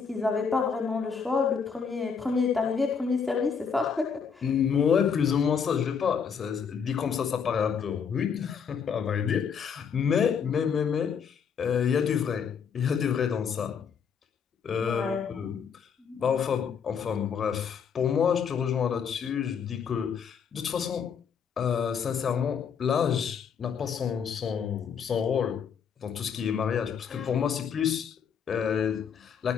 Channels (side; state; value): right; quieter; 6.7 dB